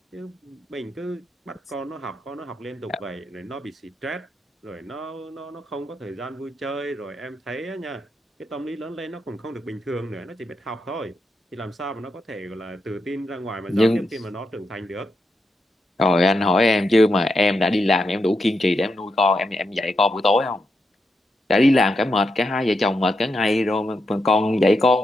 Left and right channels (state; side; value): normal; both; correlation 0.84